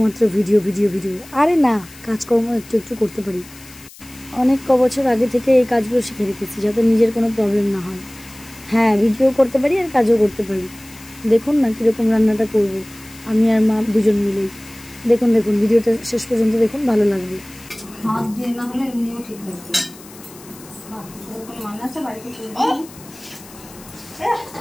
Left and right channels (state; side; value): noise; left; hiss, 20 dB below the sound